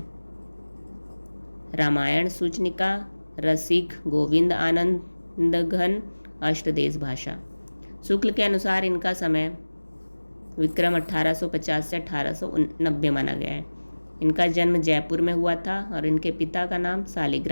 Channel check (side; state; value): both; inverted; correlation -1.00